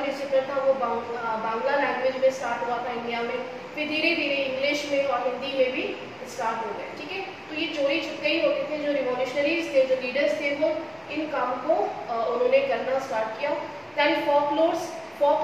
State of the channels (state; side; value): identical; both; correlation 1.00